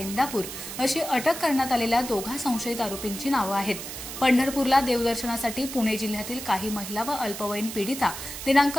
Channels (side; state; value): right; noise; hiss, 9 dB below the sound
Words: अशी अटक करण्यात आलेल्या दोघा संशयित आरोपींची नावे आहेत। पंढरपूरला देवदर्शनासाठी पुणे जिल्ह्यातील काही महिला व अल्पवयीन पीडिता दिनांक